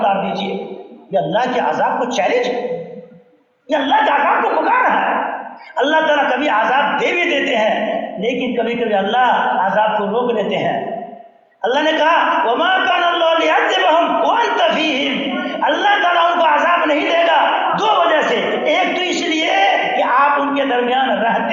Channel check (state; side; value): identical; both; correlation 1.00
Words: دیجیے۔ یہ اللہ کے عذاب کو چیلنج، یہ اللہ کے عذاب کو پکار رہا ہے۔ اللہ تعالیٰ کبھی عذاب دے بھی دیتے ہیں، لیکن کبھی کبھی اللہ عذاب کو روک لیتے ہیں۔ اللہ نے کہا وما كان اللہ ليعذبهم وانت فيهم، اللہ تعالیٰ ان کو عذاب نہیں دے گا دو وجہ سے، ایک تو اس لیے کہ آپ ان کے درمیان